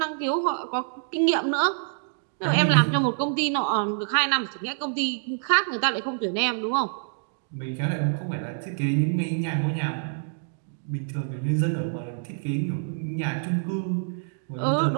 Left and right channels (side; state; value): left; silent; digital silence